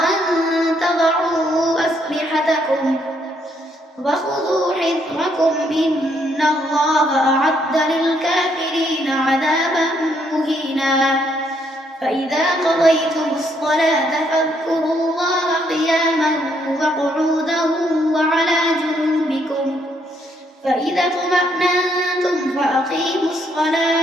أن تضعوا أسلحتكم وخذوا حذركم إن الله أعد للكافرين عذابا مهينا فإذا قضيتم الصلاة فاذكروا الله قياما وقعودا وعلى جنوبكم فإذا اطمأننتم فأقيموا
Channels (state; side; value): normal; both; correlation 0.72